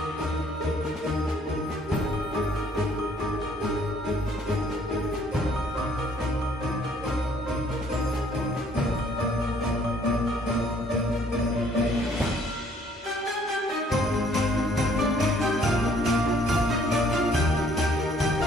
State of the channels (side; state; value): both; normal; correlation 0.62